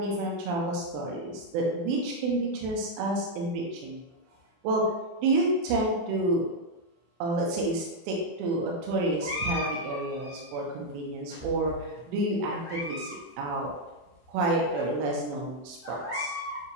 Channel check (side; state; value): left; late; 24 ms